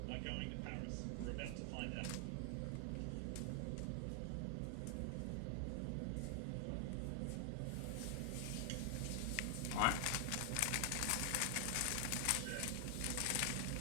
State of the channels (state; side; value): different; both; correlation 0.00